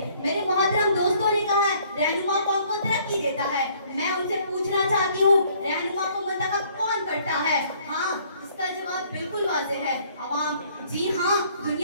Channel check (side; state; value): both; inverted; correlation -0.61